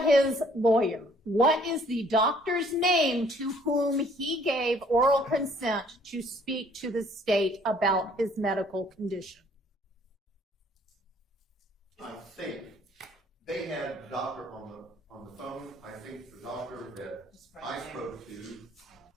his lawyer. What is the doctor's name to whom he gave oral consent to speak to the state about his medical condition? I think they had the doctor on the phone. I think the doctor that I spoke to,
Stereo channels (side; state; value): both; normal; correlation 0.60